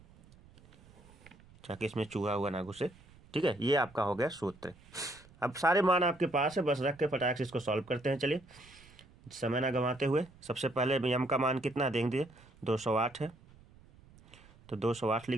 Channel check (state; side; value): noise; right; rumble, 25 dB below the sound